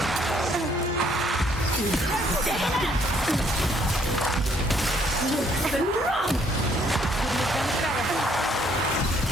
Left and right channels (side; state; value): both; normal; correlation 0.66